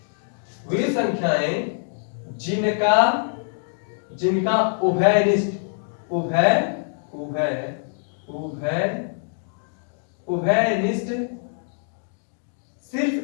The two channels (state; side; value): silent; right; digital silence